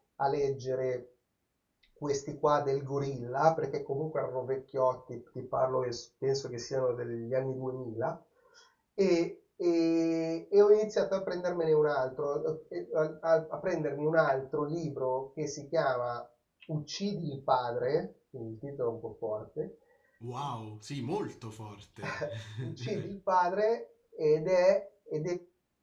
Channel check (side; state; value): both; identical; correlation 1.00